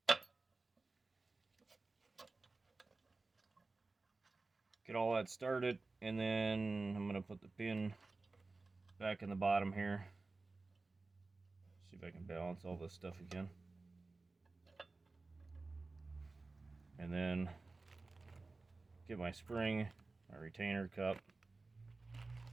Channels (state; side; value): quieter; left; 3.6 dB